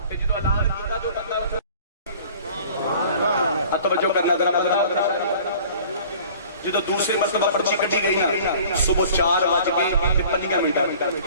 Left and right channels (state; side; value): inverted; both; correlation -0.48